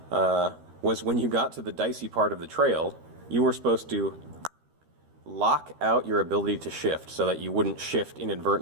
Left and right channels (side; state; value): left; late; 13 ms